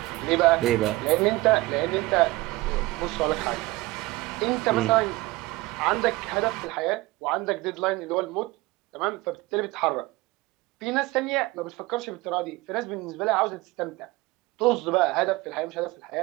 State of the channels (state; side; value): quieter; left; 20.5 dB